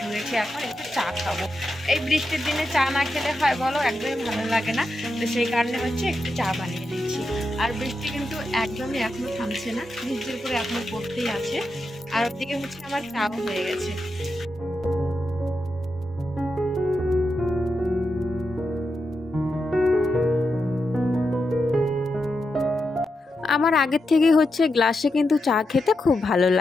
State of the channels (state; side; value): normal; both; correlation 0.87